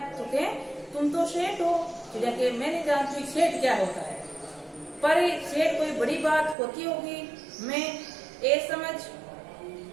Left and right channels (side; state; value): left; drops out; at 6.6 s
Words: तो क्या तुम तो सेठ हो, चिड़िया के मैं नहीं जानती सेठ क्या होता है, पर सेठ कोई बड़ी बात होती होगी, मैं ये समझ